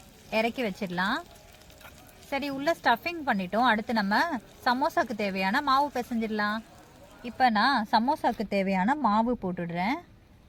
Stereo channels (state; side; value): identical; both; correlation 1.00